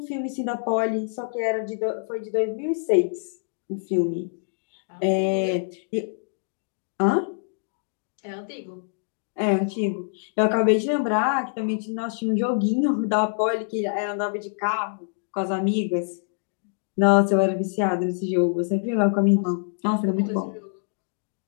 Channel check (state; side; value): silent; right; digital silence